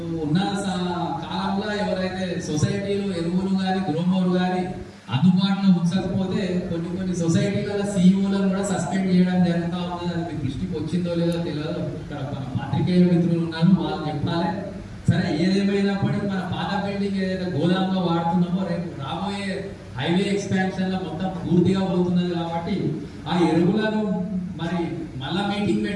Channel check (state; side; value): identical; both; correlation 1.00